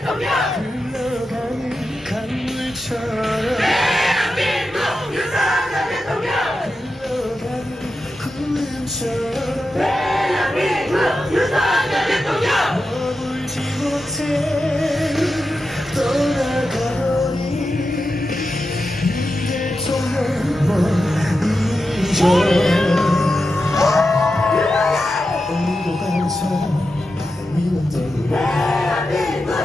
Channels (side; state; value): both; normal; correlation 0.90